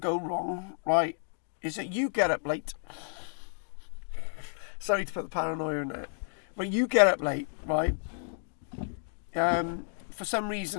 wrong, right, is that you get up late. Sorry to put the paranoia in there. But you get up late, right? For some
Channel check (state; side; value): silent; right; digital silence